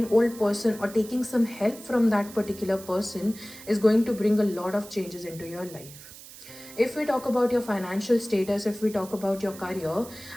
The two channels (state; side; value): noise; right; hiss, 17 dB below the sound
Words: old person, or taking some help from that particular person is going to bring a lot of changes into your life. If we talk about your financial status, if we talk about your career,